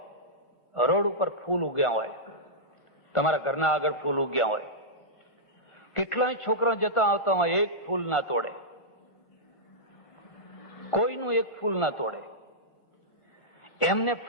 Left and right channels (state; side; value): late; right; 1.5 ms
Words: રોડ ઉપર ફૂલ ઉગ્યા હોય, તમારા ઘરના આગળ ફૂલ ઉગ્યા હોય, કેટલાય છોકરા જતા આવતા હોય, એક ફૂલ ના તોડે, કોઈનું એક ફૂલ ના તોડે. એમને